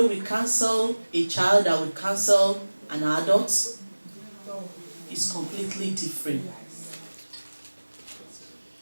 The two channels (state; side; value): inverted; both; correlation -1.00